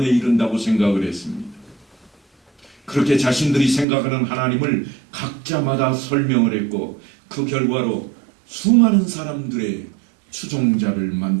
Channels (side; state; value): left; drops out; at 3.9 s